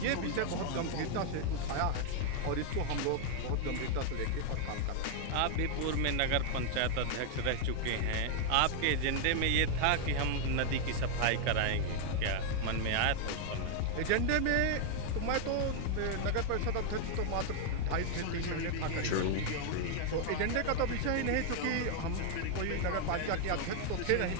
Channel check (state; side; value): different; both; correlation 0.00